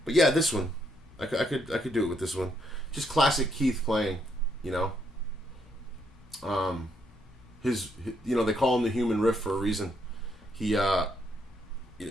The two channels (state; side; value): normal; both; correlation 0.74